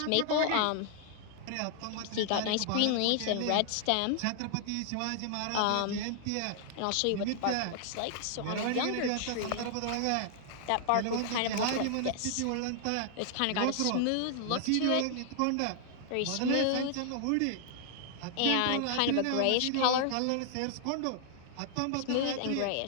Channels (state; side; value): different; both; correlation -0.01